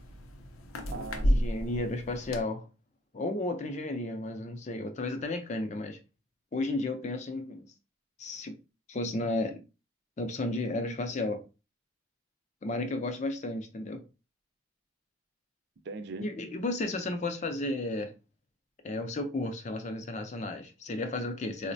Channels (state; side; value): normal; both; correlation 0.52